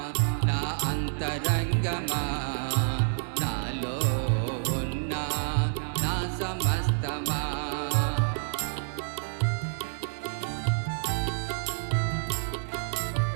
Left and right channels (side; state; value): left; silent; digital silence